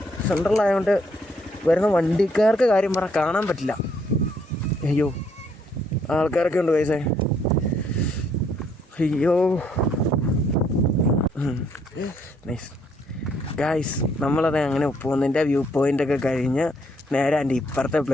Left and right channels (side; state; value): both; normal; correlation 0.69